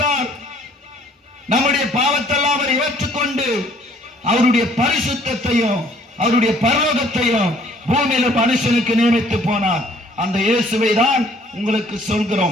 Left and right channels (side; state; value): both; normal; correlation 0.59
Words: நம்முடைய பாவத்தெல்லாம் அவர் ஏற்றுக்கொண்டு அவருடைய பரிசுத்தத்தையும் அவருடைய பரலோகத்தையும் பூமியில மனுஷனுக்கு நியமித்து போனார். அந்த இயேசுவை தான் உங்களுக்கு